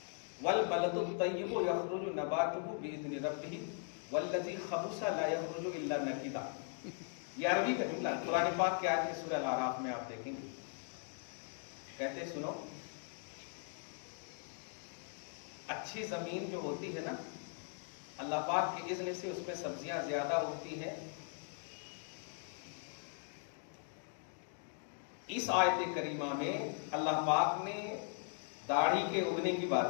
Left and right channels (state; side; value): silent; right; 52 dB below the other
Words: والبلد الطیب یخرج نباتہ باذن ربہ والذی خبث لا یخرج الا نکدا. یہ عربی کا جملہ قرآن پاک کی آیت ہے سورہ الاعراف میں, آپ دیکھیں گے. کہتے ہیں سنو, اچھی زمین جو ہوتی ہے نا, اللہ پاک کے اذن سے اس میں سبزیاں زیادہ ہوتی ہیں. اس آیت کریمہ میں اللہ پاک نے داڑھی کے اگنے کی بات